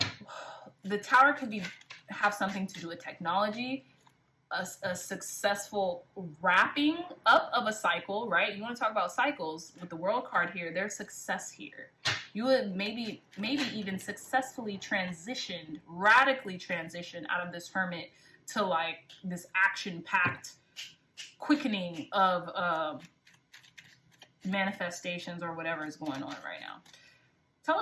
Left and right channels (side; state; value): both; identical; correlation 1.00